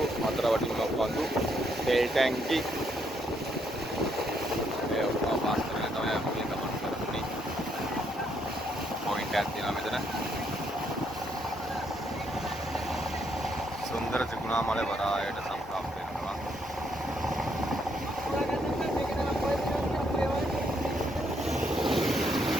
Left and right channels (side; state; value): both; normal; correlation 0.74